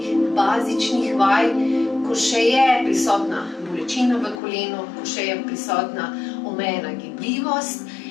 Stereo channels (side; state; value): right; drops out; at 4.4 s